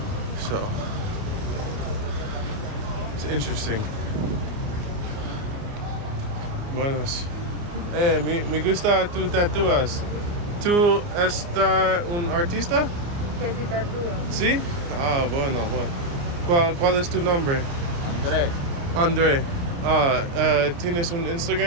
So it's interesting. Buenos. Me gusta tu tatuas. ¿Tú estás un artista? Que si tatúa. ¿Sí? Ah, bueno. ¿Cuál es tu nombre? André. André. ¿Tienes un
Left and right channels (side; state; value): left; late; 29 ms